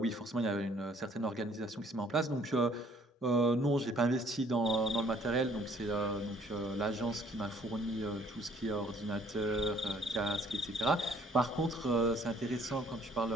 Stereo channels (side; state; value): both; normal; correlation 0.60